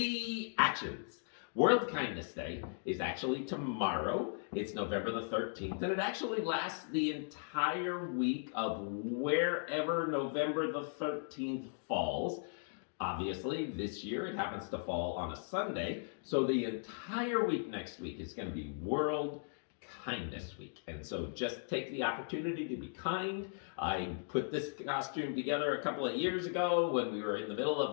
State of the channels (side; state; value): right; silent; digital silence